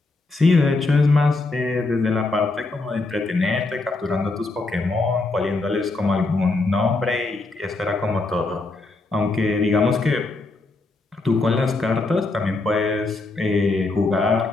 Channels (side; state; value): right; quieter; 3.3 dB